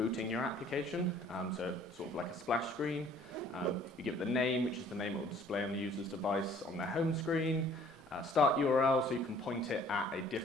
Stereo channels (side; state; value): both; normal; correlation 0.55